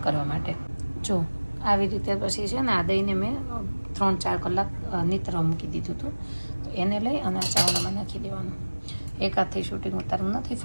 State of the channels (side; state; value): both; inverted; correlation -1.00